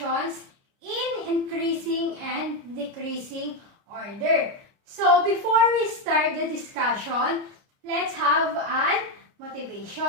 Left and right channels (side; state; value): left; late; 30 ms